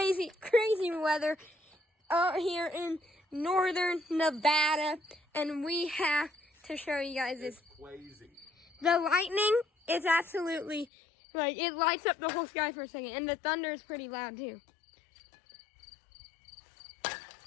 weather out here in northern Nevada. And we have to show you guys this. It's crazy. The lightning is absolutely, like, it lights up the whole sky for a second. And the thunder is pretty loud too.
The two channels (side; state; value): right; drops out; at 10.9 s